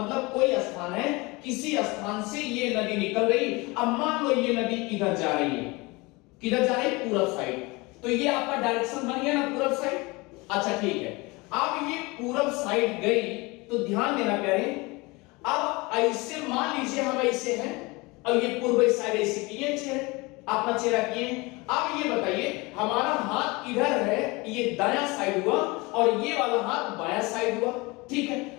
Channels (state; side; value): quieter; right; 24.6 dB